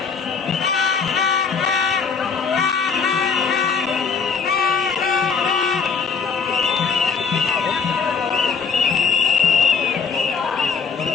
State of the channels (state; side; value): quieter; right; 5.7 dB